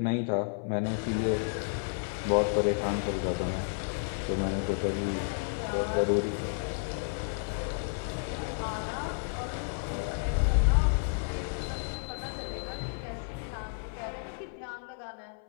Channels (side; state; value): right; silent; 57 dB below the other